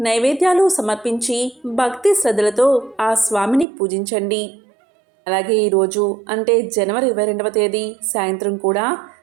నైవేద్యాలు సమర్పించి భక్తి శ్రద్ధలతో ఆ స్వామిని పూజించండి. అలాగే ఈరోజు అంటే జనవరి 22వ తేదీ సాయంత్రం కూడా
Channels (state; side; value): drops out; left; at 3.7 s